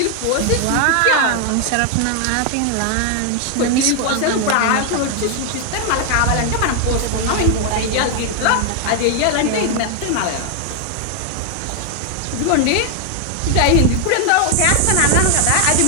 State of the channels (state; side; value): different; both; correlation 0.00